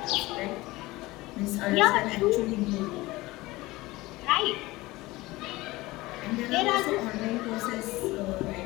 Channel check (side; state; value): right; quieter; 19.9 dB